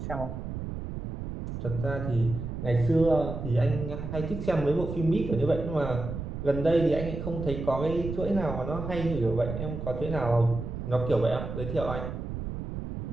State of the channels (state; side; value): noise; right; rumble, 6 dB below the sound